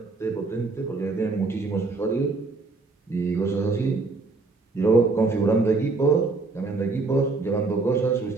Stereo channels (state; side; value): quieter; left; 3.8 dB